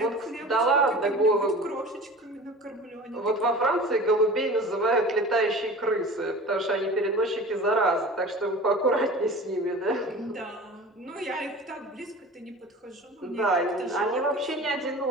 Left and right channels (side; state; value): both; normal; correlation 0.38